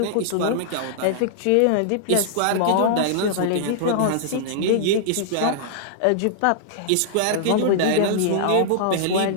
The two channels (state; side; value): different; both; correlation -0.01